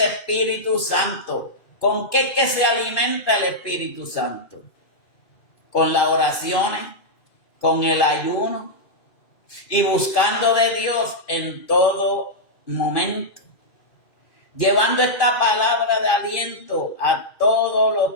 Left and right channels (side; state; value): right; late; 2.4 ms